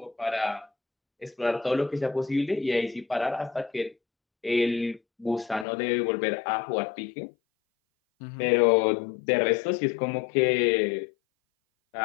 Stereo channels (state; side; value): drops out; right; at 5.7 s